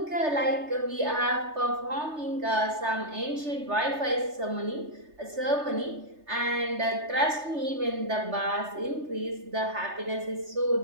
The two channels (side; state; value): left; late; 3.3 ms